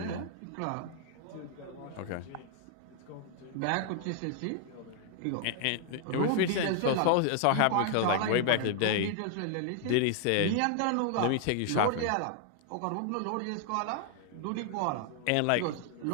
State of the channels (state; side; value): different; both; correlation 0.00